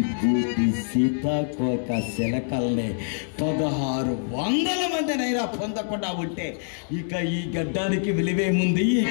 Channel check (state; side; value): silent; right; digital silence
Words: బూటి సీతాకోక శిలకల్ని 1600 మందినైనా పొందకుండా ఉంటే ఇక ఈ గడ్డానికి విలువేముంది? ఈ